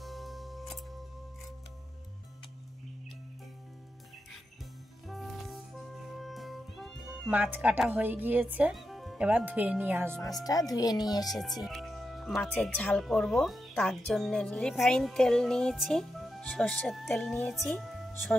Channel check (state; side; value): normal; both; correlation 0.87